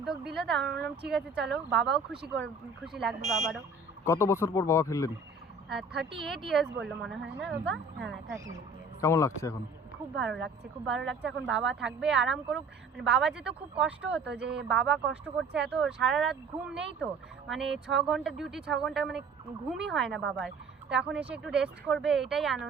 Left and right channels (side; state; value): left; quieter; 3.6 dB